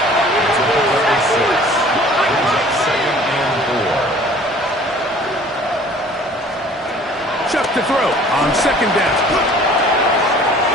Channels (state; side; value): normal; both; correlation 0.50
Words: Shuck to throw on 2nd down.